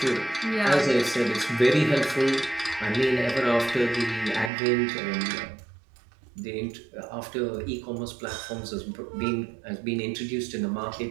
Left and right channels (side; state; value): left; drops out; at 4.5 s